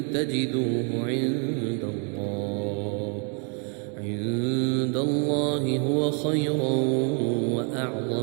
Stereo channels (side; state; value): left; quieter; 38.9 dB